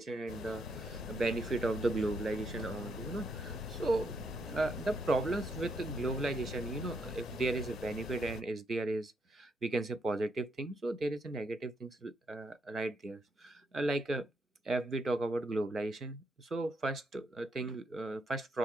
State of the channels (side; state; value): both; normal; correlation 0.76